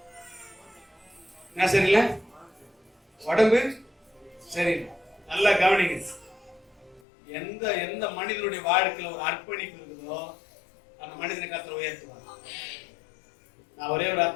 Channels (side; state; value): right; drops out; at 7.0 s